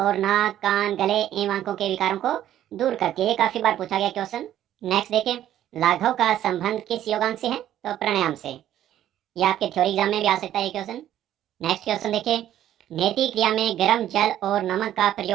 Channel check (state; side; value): quieter; left; 11.9 dB